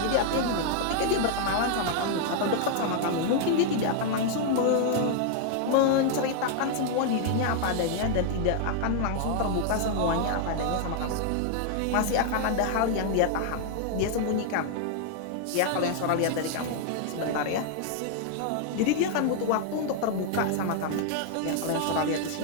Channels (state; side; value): different; both; correlation -0.01